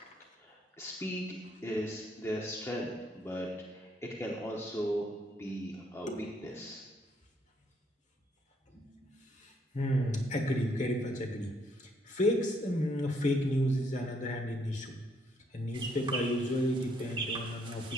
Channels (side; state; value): both; normal; correlation 0.70